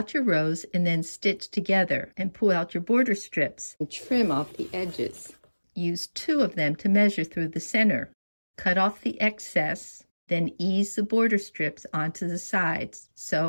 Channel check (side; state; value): both; inverted; correlation -1.00